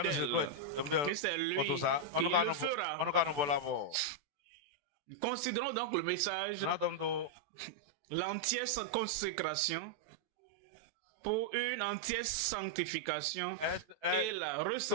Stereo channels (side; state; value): left; late; 14 ms